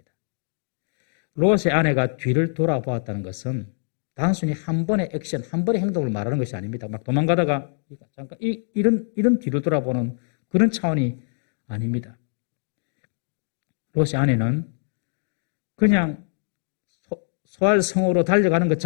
롯의 아내가 뒤를 돌아보았다는 것은 단순히 한 번의 액션, 한 번의 행동을 말하는 것이 아닙니다. 막 도망가다가 잠깐 이런 뒤를 돌아보는 그런 차원이 아닙니다. 롯의 아내는 그냥 소알 성으로 달려가는 것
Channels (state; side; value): silent; right; digital silence